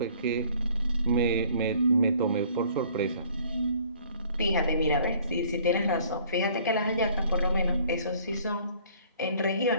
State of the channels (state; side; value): inverted; both; correlation -0.56